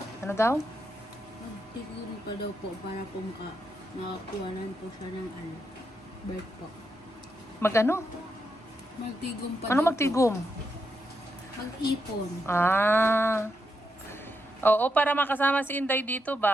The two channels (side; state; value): both; normal; correlation 0.83